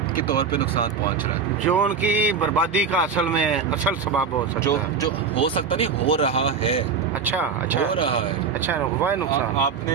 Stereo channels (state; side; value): quieter; left; 5.9 dB